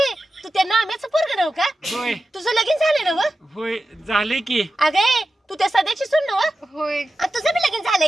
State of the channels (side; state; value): both; normal; correlation 0.93